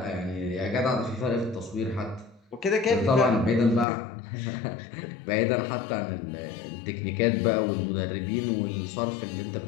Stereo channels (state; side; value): drops out; right; at 3.9 s